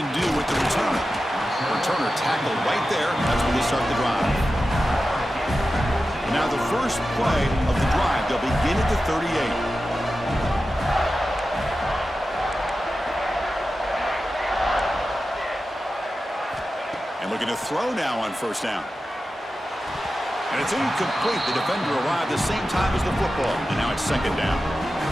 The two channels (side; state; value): both; normal; correlation 0.93